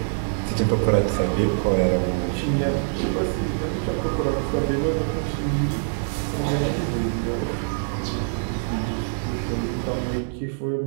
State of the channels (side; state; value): left; silent; 62 dB below the other